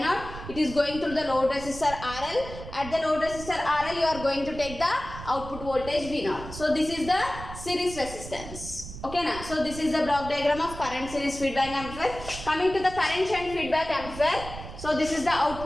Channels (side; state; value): right; noise; rumble, 12 dB below the sound